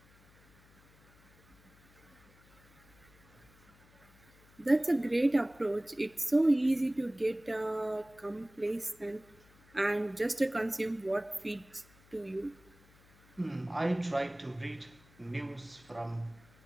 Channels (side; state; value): left; noise; hum, 27 dB below the sound